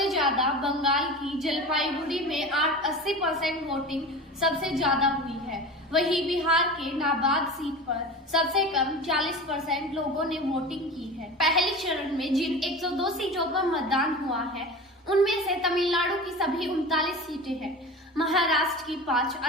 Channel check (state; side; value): normal; both; correlation 0.32